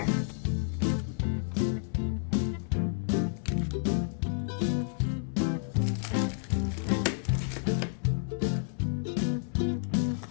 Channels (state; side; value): silent; right; 58 dB below the other